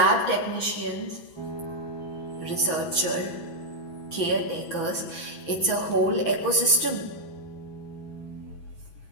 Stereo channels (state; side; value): late; right; 6.1 ms